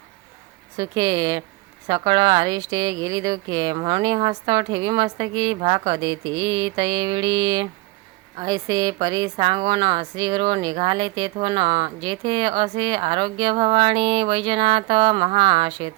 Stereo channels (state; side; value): quieter; left; 21.9 dB